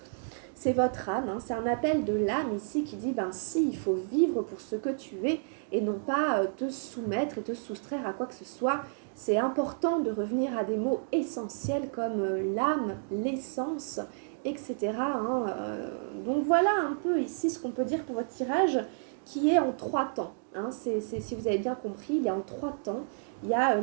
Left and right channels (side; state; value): left; silent; digital silence